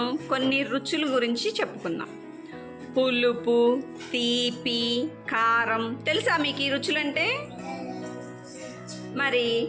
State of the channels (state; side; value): identical; both; correlation 1.00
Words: కొన్ని రుచుల గురించి చెప్పుకుందాం. పులుపు, తీపి, కారం. తెలుసా మీకు ఈ రుచులంటే? మరి